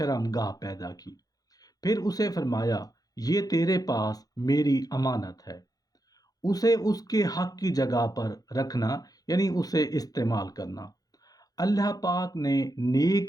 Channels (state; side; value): late; right; 0.18 ms